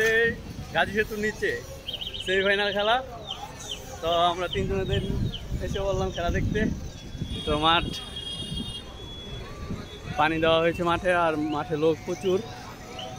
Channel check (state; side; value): identical; both; correlation 1.00